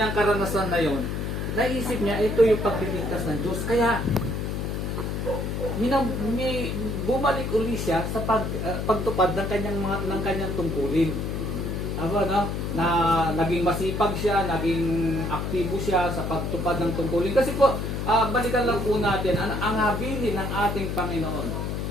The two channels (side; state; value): left; noise; hum, 2 dB below the sound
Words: karanasan na yon, naisip niya ito yung pagliligtas ng Diyos. Kaya bumalik uli siya sa pagtupad ng kanyang tungkulin. Na naging masipag siya, naging aktibo siya sa pagtupad ng tungkulin. Kasi po, balikan lang po natin ang habilin ng ating Panginoon